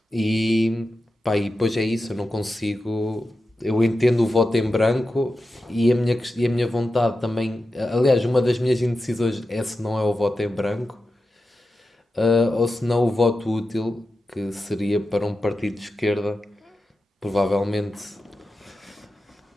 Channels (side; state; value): both; normal; correlation 0.91